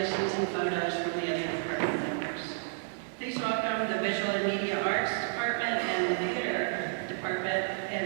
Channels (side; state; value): left; silent; digital silence